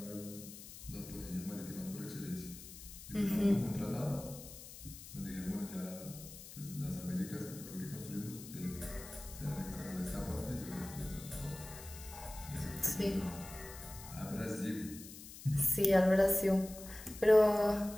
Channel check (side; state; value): left; noise; hiss, 14 dB below the sound